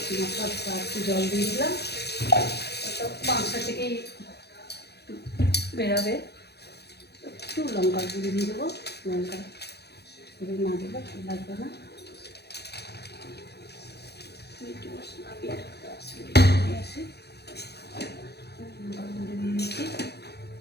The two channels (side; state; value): right; late; 0.48 ms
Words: মশলা ধোয়া একটু জল দিয়ে দিলাম, মাংস থেকেই বেরাবে। একটু লঙ্কার গুঁড়ি দিয়ে দেবো, লঙ্কা গুঁড়ি না দিলে ভালো লাগবে না। মিট মশলা দিয়ে আসি, লঙ্কার গুঁড়ি দিয়ে দিচ্ছি।